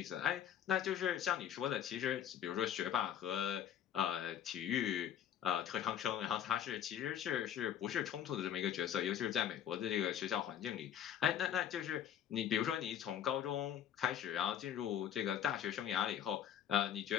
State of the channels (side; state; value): right; quieter; 9.8 dB